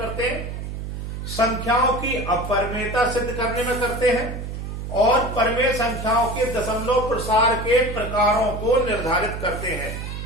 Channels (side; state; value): right; noise; hum, 6 dB below the sound